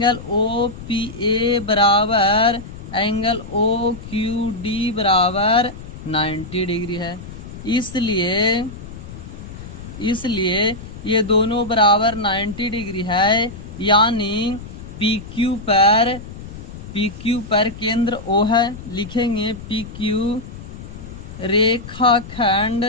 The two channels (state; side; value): noise; left; rumble, 13 dB below the sound